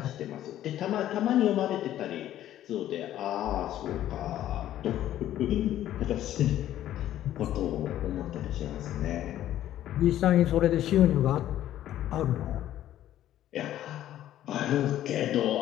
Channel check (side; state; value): right; quieter; 12.5 dB